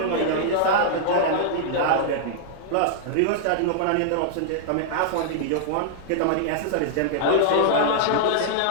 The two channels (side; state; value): both; different; correlation -0.01